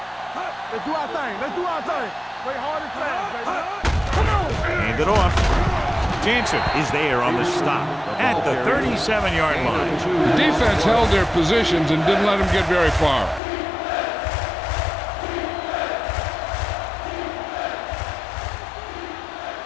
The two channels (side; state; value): right; drops out; at 13.4 s